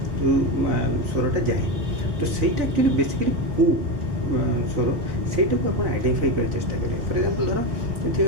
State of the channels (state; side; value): late; left; 4.0 ms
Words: जो स्वरटा जाए तो सहीटा एक्चुअली बेसिकली कू स्वर सेटा को आप आइडेंटिफाई कर चेष्टा करेंगे फॉर एग्जांपल